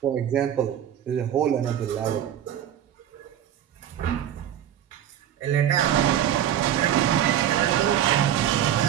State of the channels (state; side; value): quieter; left; 10.6 dB